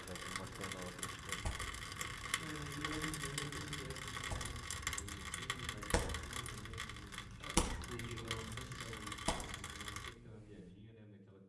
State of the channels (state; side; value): identical; both; correlation 1.00